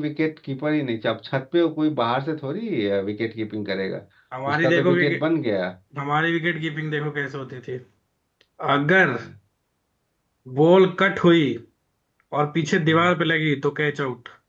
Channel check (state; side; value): identical; both; correlation 1.00